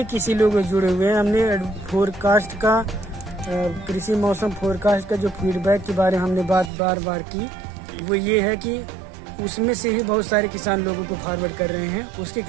किसी लोग जुड़े हुए हैं। हमने फोरकास्ट का कृषि मौसम फोरकास्ट का जो फीडबैक के बारे में हमने बात बार बार की, वो ये है कि उसमें से ही बहुत सारे किसान लोगों को फॉरवर्ड कर रहे हैं, उसकी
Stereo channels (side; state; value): left; drops out; at 6.7 s